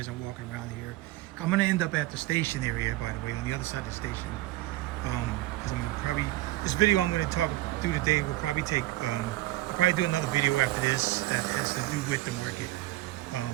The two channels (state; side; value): quieter; left; 17.7 dB